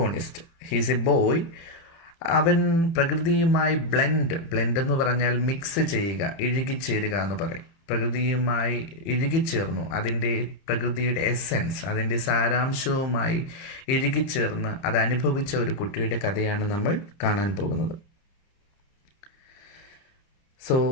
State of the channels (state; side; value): late; right; 30 ms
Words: ഹീസ് എ ബോയ്. അവൻ പ്രകൃതിയുമായി ബ്ലെൻഡ് എന്ന് പറഞ്ഞാൽ മിക്സ് ചെയ്യുക, ഇഴുകിച്ചേരുക എന്ന് പറയും. പ്രകൃതിയുമായി ഇഴുകിച്ചേർന്നു, അതിൻ്റെ പ്രകൃതിയുടെ എസെൻസ്, അതിൻ്റെ സാരാംശവുമായി ഇഴുകിച്ചേർന്ന് അത് അനുഭവിച്ച ഒരു കുട്ടിയുടെ കഥയാണ് നമ്മൾ കാണാൻ പോകുന്നത്. So,